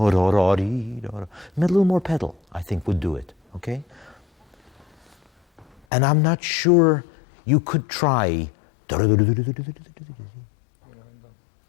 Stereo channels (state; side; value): drops out; right; at 5.8 s